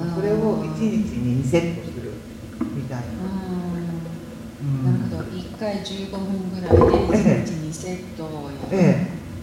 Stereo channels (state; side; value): identical; both; correlation 1.00